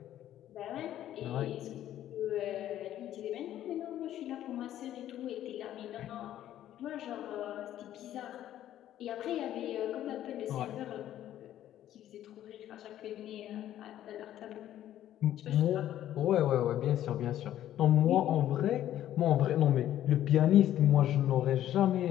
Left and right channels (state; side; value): quieter; right; 12.2 dB